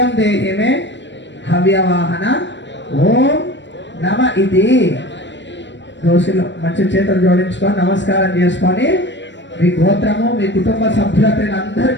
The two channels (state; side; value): late; right; 0.53 ms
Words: దేహి మే హవ్యవాహన. ఓం నమ. ఇది దోషులు మంచి చేతులు జోడించుకొని నమస్కారం చేసుకొని మీ గోత్రము, మీ కుటుంబ సభ్యుల పేరు అందరి